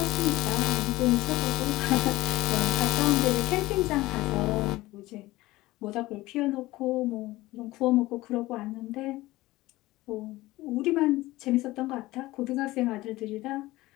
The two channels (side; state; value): right; quieter; 18.5 dB